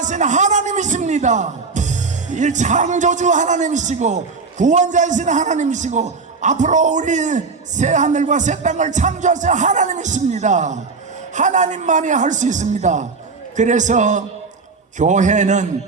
하나님이십니다. 이 창조주 하나님이시고 구원자이신 하나님이시고 앞으로 우리 새 하늘과 새 땅을 창조하신 하나님이십니다. 하나님만이 할 수 있습니다. 그래서 교회는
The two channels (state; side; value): quieter; left; 4.5 dB